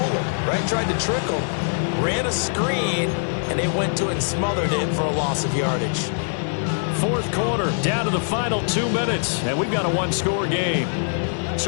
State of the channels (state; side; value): silent; right; digital silence